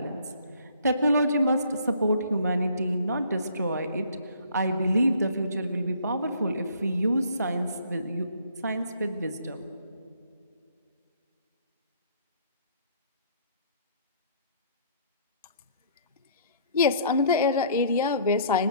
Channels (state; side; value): inverted; both; correlation -0.59